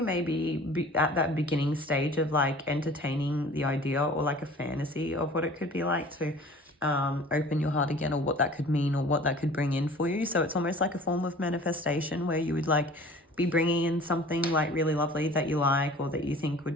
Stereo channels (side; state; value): both; normal; correlation 0.46